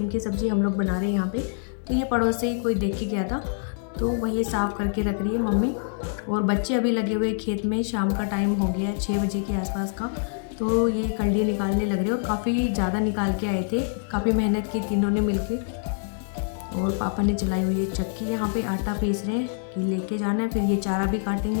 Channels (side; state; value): right; silent; digital silence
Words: की सब्ज़ी हम लोग बना रहे हैं यहाँ पे। तो ये पड़ोस से ही कोई देख के गया था तो वही साफ़ करके रख रही है मम्मी। और बच्चे अभी लगे हुए खेत में, शाम का टाइम हो गया है 6 बजे के आसपास का। तो ये कल्डी निकालने लग रहे और काफ़ी ज़्यादा निकाल के आए थे, काफ़ी मेहनत की तीनों ने मिलके। और पापा ने चलाई हुई है चक्की, यहाँ पे आटा पीस रहे हैं कि लेके जाना है। फिर ये चारा भी